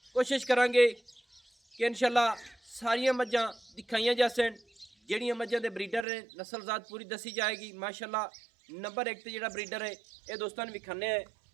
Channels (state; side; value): drops out; left; at 6.1 s